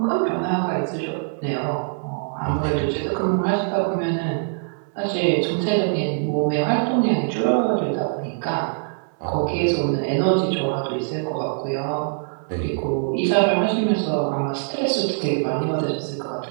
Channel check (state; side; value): silent; left; digital silence